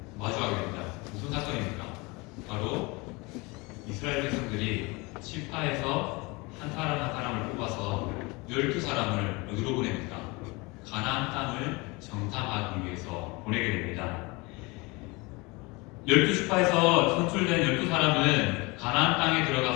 마주하게 됩니다. 무슨 사건입니까? 바로 이스라엘 백성들이 시파에서 한 사람 한 사람을 뽑아서 12사람을 어디로 보냅니까? 가나안 땅을 정탐하기 위해서 보내게 됩니다. 12시파에서 선출된 12사람은 가나안 땅에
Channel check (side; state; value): right; quieter; 25.8 dB